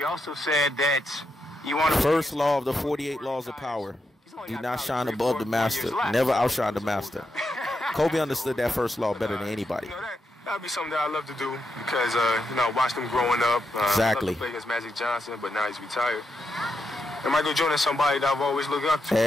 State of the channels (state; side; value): normal; both; correlation 0.84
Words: also said that you want to. First law of the 48 laws of power. Do not shine above the master. Never outshine the master. Kobe understood that first law better than anybody. That'd be something that I love to do because, I watched him growing up. Exactly. I loved to play against Magic Johnson, but now he's retired. And Michael Jordan is somebody that I've always looked up to.